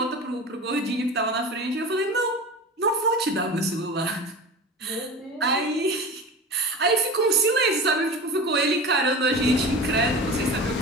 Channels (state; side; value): normal; both; correlation 0.32